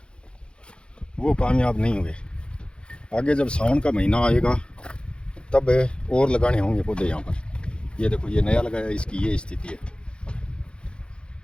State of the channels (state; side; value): late; right; 0.055 ms